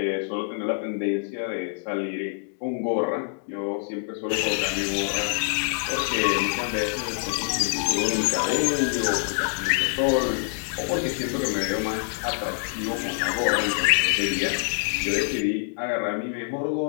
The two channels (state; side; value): silent; right; digital silence